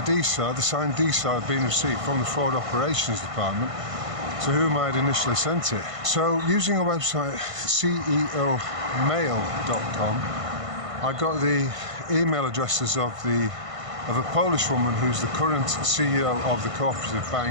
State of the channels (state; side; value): late; left; 1.5 ms